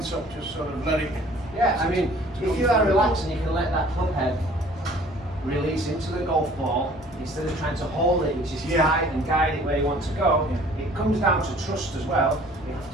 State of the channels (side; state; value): both; normal; correlation 0.52